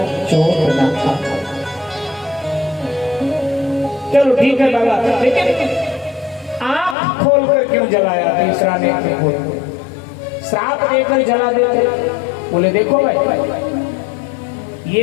चोट न था। चलो ठीक है बाबा, लेकिन आंख खोलकर क्यों जलाया? तीसरा नेत्र खोल, श्राप देकर जला देते। बोले देखो भाई,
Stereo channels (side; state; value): right; drops out; at 7.0 s